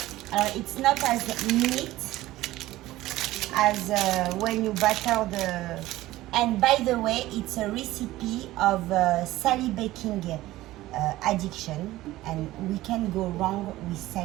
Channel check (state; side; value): quieter; left; 16.6 dB